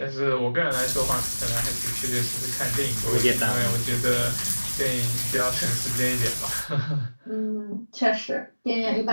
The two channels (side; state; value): both; inverted; correlation -1.00